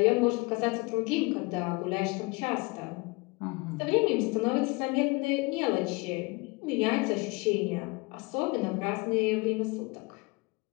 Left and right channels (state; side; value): quieter; right; 26.5 dB